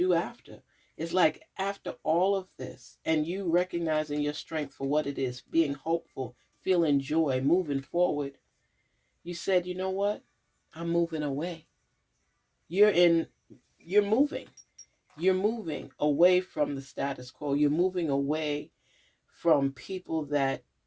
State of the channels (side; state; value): both; identical; correlation 1.00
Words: after. It's like after all of this and you recognizing your strength for what it is, being hopeful, feeling joy, moving forward, you said, you know what? I'm moving away. You're in, you're moving. You're moving away from the status quo. You're moving away from people that